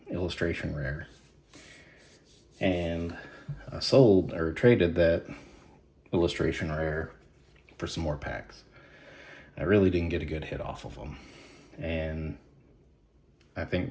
illustration rare. And I sold or traded that illustration rare for some more packs. I really didn't get a good hit off of them. And I think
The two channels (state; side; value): identical; both; correlation 1.00